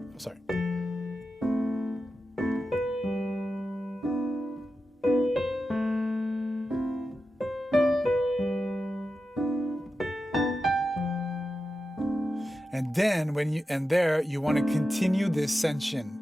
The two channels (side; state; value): both; normal; correlation 0.91